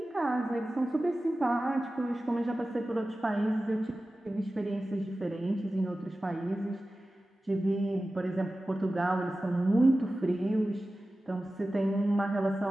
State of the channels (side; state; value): both; normal; correlation 0.95